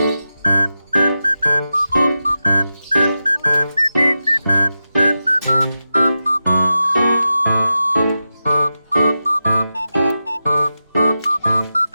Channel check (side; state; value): both; inverted; correlation -0.91